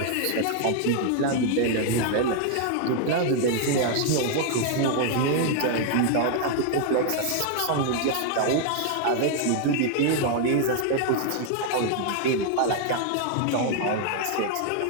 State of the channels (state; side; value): different; both; correlation 0.00